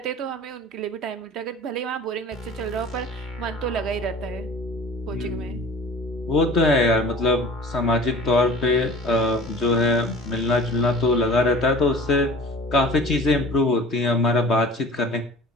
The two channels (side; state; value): both; normal; correlation 0.43